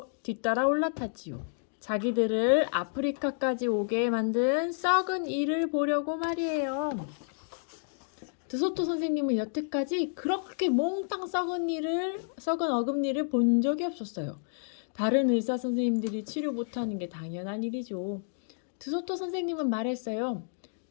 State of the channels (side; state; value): right; silent; digital silence